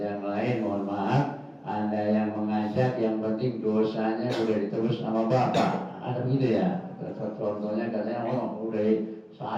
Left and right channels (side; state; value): both; identical; correlation 1.00